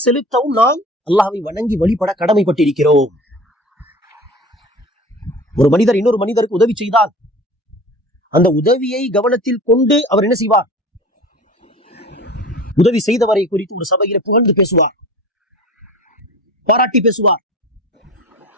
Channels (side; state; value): both; normal; correlation 0.39